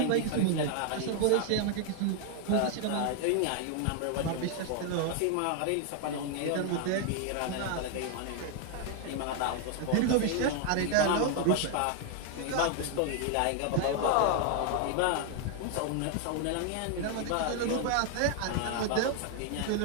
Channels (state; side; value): different; both; correlation 0.00